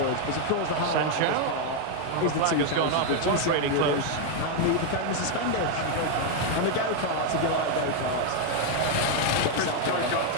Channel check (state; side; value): different; both; correlation 0.01